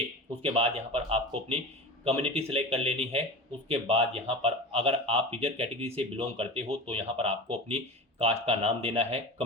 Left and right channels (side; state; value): both; normal; correlation 0.30